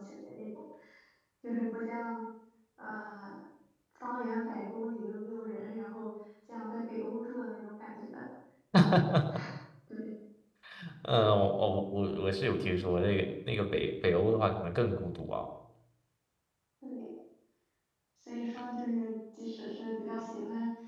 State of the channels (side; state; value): both; identical; correlation 1.00